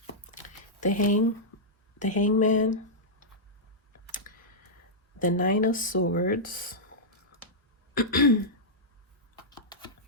The Hangman, the Nine of Swords,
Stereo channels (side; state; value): both; normal; correlation -0.10